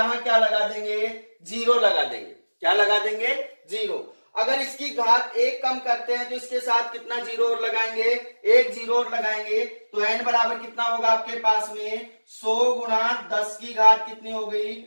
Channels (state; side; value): inverted; both; correlation -1.00